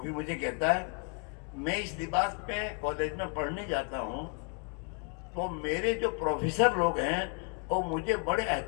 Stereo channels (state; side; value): quieter; right; 37.8 dB